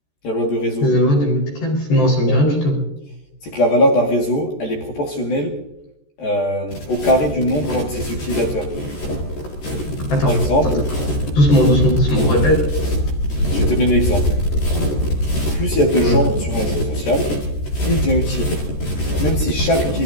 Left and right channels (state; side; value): late; right; 14 ms